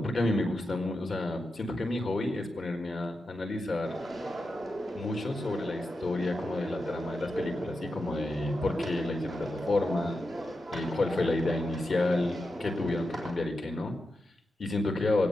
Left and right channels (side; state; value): both; normal; correlation 0.89